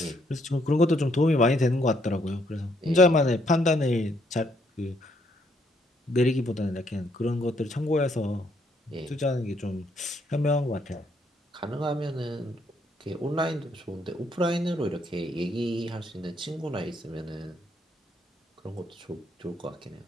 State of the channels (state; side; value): normal; both; correlation 0.71